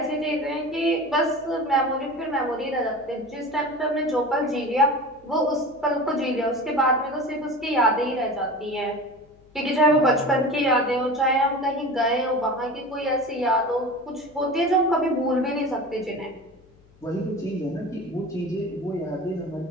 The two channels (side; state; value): left; noise; hum, 29 dB below the sound